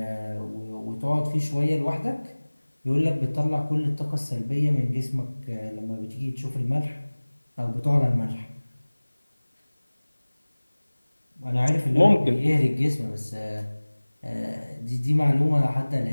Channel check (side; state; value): both; inverted; correlation -1.00